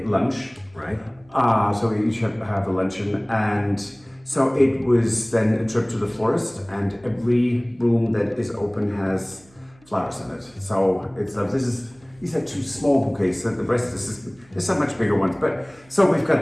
lunch. Right. So we each have a luncheon, and so it was then a trip to the florist, and every room that is open has flowers in it. So it's these are two small bouquets. So the rest there's some much bigger ones. But so we've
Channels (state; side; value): noise; right; hum, 29 dB below the sound